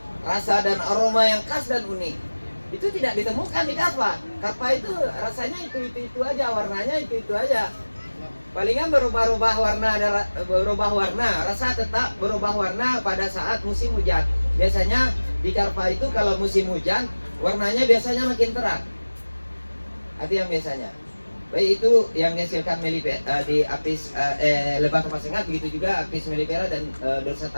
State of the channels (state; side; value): inverted; both; correlation -1.00